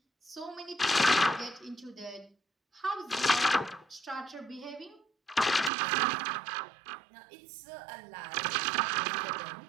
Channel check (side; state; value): left; drops out; at 5.7 s